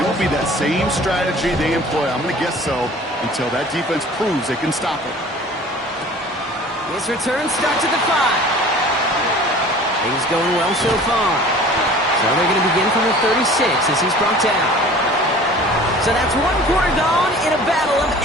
it will be that same strategy they employ, I'm going to guess so, until that defense proves they can stop it. His return starts at the 5. Things going well so far. So they're going to begin from the 36 as he's brought down. So that's 1 quarter gone in a battle of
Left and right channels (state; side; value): normal; both; correlation 0.45